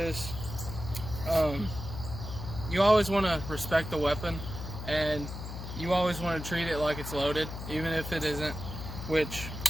you always want to respect the weapon, and you always want to treat it like it's loaded, even if it isn't, which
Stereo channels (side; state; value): left; noise; hum, 8 dB below the sound